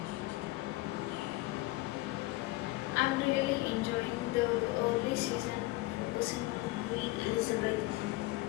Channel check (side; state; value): right; quieter; 19.9 dB